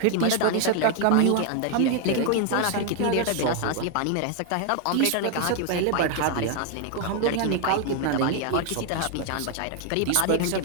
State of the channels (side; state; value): both; different; correlation 0.00